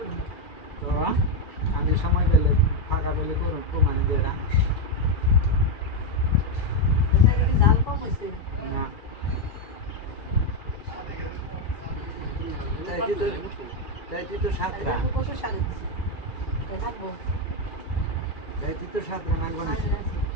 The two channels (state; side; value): late; right; 2.3 ms